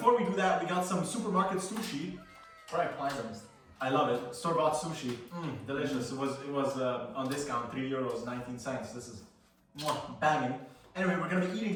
we do that, we got some supermarket sushi. Right, pleasant. I love it. Store-bought sushi. Delicious. It was on discount, €3, 19 cents. This is banging. Anyway, we're gonna be eating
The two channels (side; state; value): both; identical; correlation 1.00